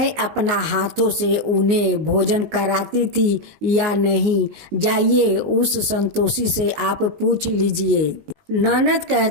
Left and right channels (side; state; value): left; late; 19 ms